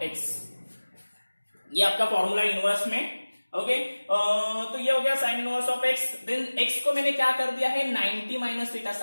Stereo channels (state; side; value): inverted; both; correlation -1.00